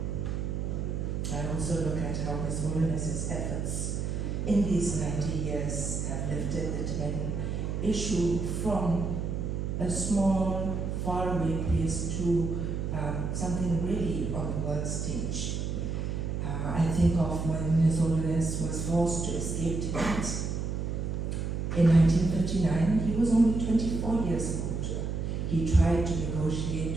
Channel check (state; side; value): noise; right; hum, 2 dB below the sound